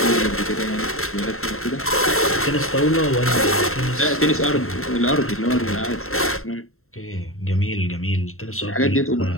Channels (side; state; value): right; late; 0.62 ms